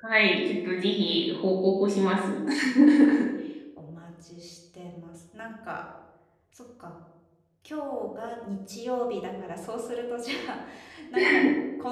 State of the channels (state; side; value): identical; both; correlation 1.00